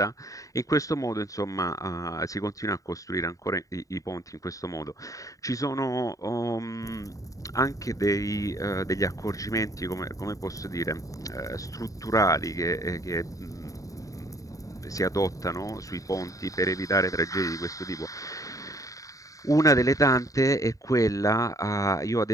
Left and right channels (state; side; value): late; right; 0.16 ms